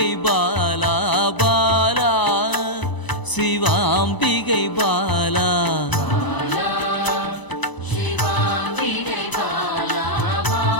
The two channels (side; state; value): right; late; 1.0 ms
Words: பாலா, பாலா சிவாம்பிகை பாலா.